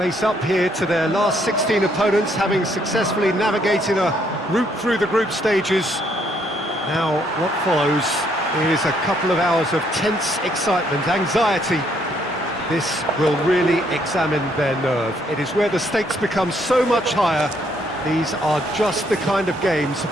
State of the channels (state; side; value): normal; both; correlation 0.70